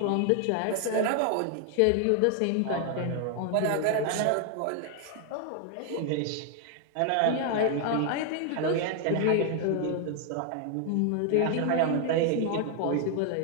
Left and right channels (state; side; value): different; both; correlation 0.00